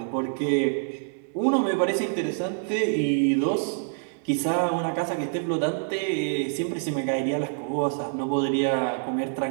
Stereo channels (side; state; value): left; silent; 61 dB below the other